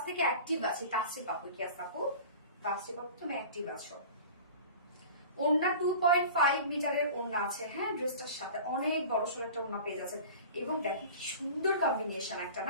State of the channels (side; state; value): both; inverted; correlation -0.39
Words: থেকে অ্যাক্টিভ আছে, টাচে পাবো কি আপু, ফার্স্টে পাবো তুমি অ্যাক্টিভ আছো। ওড়না 2.5 মিটারের ওড়না আছে, হ্যাঁ ড্রেসটার সাথে অনেক বড় সড়ো একটা ওড়না পেয়ে যাচ্ছে। এবং দেখো কি সুন্দর কম্বিনেশন একটা